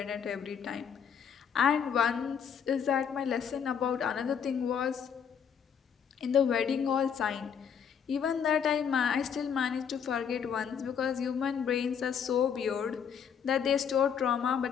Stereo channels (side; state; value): right; quieter; 7.5 dB